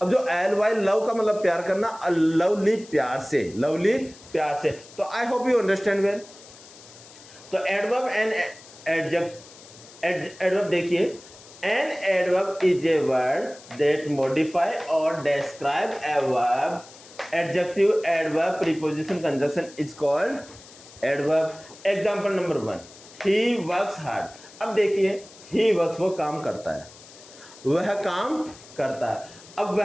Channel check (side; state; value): left; noise; hiss, 21 dB below the sound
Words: अब जो एल वाई लव का मतलब प्यार करना, लवली प्यार से, लवली प्यार से। तो I hope you understand well. तो एडवर्ब एंड एडवर्ब देखिए, an adverb is a word that modify और describe a verb. Adjective, adverb, preposition, conjunction is called adverb. Example number 1, he works hard. अब देखिए, ही वर्क्स वो काम करता है, वह काम करता है। अब